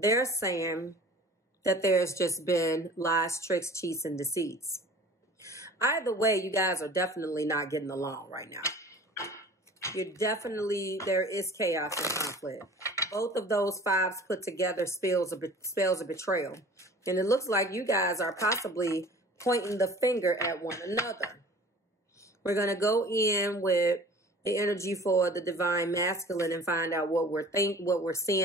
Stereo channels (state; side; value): normal; both; correlation 0.44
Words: saying that there's just been lies, tricks, cheats, and deceits. Either way, you guys are definitely not getting along right now. There is chaos and conflict. Both of those fives put together spells a betrayal. And it looks like you guys are possibly pointing the finger at one another. We're going to go in with the energy for the Divine Masculine and find out what we're